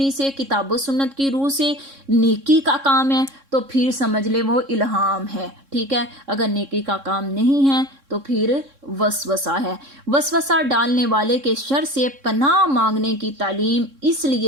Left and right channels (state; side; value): late; left; 3.6 ms